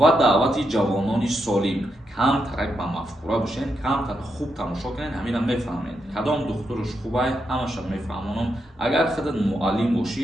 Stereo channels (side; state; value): both; normal; correlation 0.83